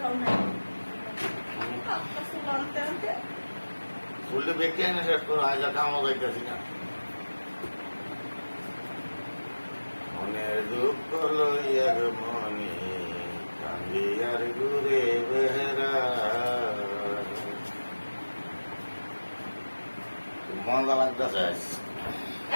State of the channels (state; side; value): inverted; both; correlation -1.00